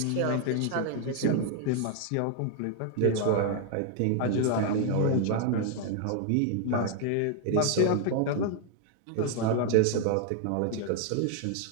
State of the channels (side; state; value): both; different; correlation 0.00